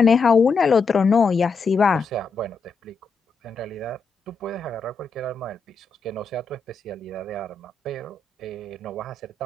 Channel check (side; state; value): right; quieter; 4.4 dB